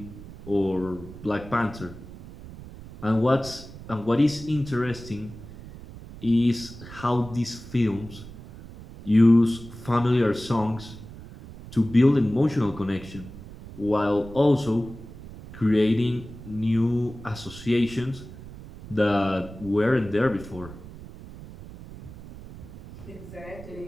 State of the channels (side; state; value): right; noise; rumble, 15 dB below the sound